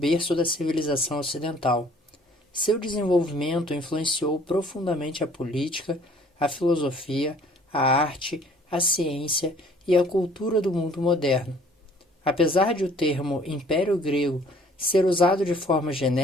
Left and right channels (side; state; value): both; normal; correlation 0.56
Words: da civilização ocidental. Seu desenvolvimento influenciou profundamente a política, a filosofia, a arte, a ciência e a cultura do mundo moderno. Apesar de o termo Império Grego ser usado de forma